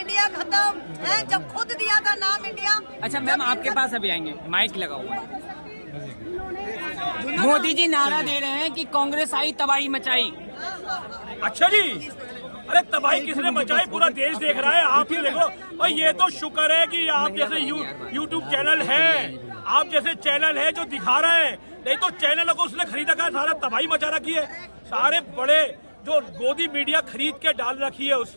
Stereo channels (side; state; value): both; inverted; correlation -1.00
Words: खत्म है। जब खुद दिया था नाम इंडिया। अच्छा मैम, आपके पास अभी आएंगे, माइक लगा हुआ है। मोदी जी नारा दे रहे हैं कि कांग्रेस आई तबाही मचाई। अच्छा जी, अरे तबाही किसने मचाई? पूरा देश देख रहा है, आप ही देखो। और ये तो शुक्र है कि आप जैसे यूट्यूब चैनल है, आप जैसे चैनल है जो दिखा रहे हैं, नहीं तो चैनलों को उसने खरीदा का सारा तबाही मचा रखी है। सारे बड़े जो गोदी मीडिया खरीद के डाल रखी है